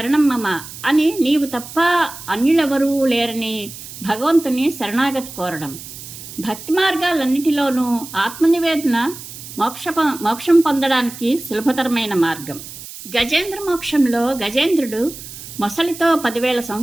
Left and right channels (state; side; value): noise; right; hiss, 13 dB below the sound